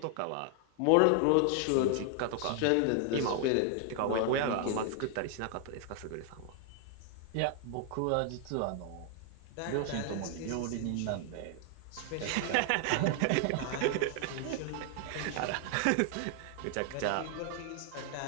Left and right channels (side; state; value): both; different; correlation 0.00